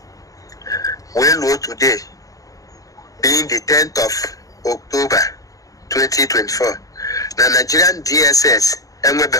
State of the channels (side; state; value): right; late; 0.17 ms